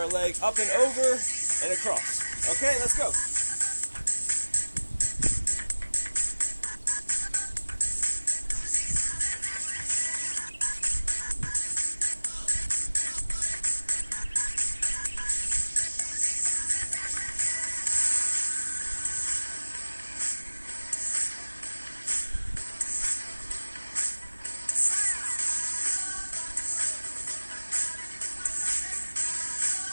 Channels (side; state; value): both; inverted; correlation -1.00